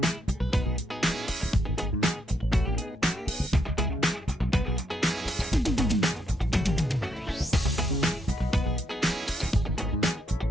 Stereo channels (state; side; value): normal; both; correlation 0.76